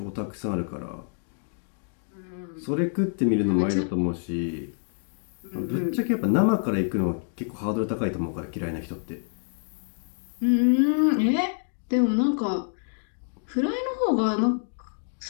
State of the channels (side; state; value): right; silent; digital silence